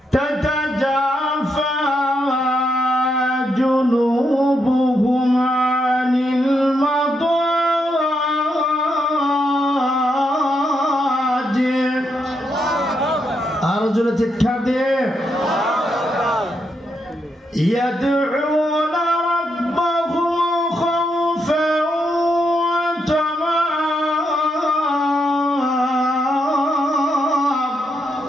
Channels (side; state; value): both; normal; correlation 0.80